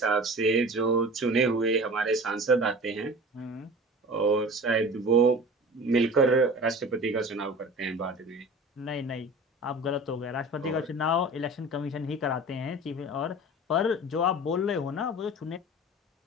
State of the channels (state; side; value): normal; both; correlation 0.38